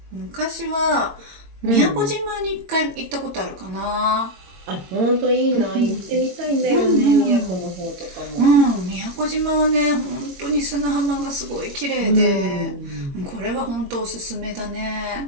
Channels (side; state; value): left; late; 21 ms